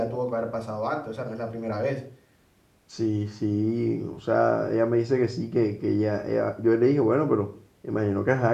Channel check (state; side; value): identical; both; correlation 1.00